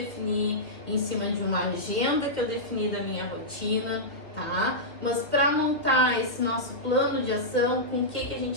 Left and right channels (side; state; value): right; late; 2.4 ms